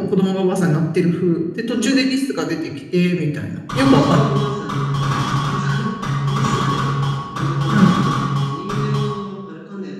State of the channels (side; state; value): both; identical; correlation 1.00